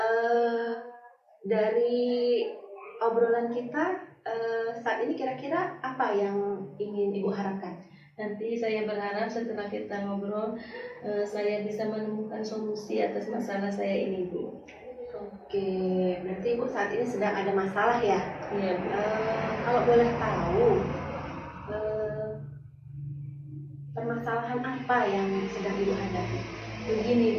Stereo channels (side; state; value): both; identical; correlation 1.00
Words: Dari obrolan kita saat ini kira-kira apa yang ingin Ibu harapkan? Nanti saya berharap setelah kita ngobrol, saya bisa menemukan solusi atas masalah saya ini Bu. Oke, berarti Ibu saat ini sedang ada masalah ya? Iya Bu. Kalau boleh tahu, permasalahan apa yang sedang Ibu hadapi? Begini